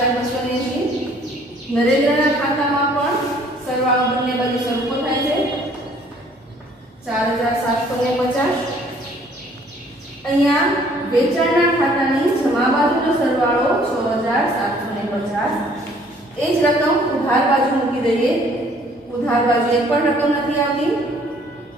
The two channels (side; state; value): both; normal; correlation 0.59